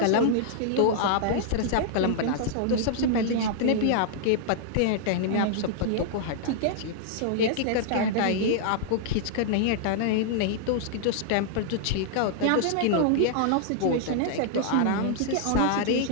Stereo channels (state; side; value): different; both; correlation -0.01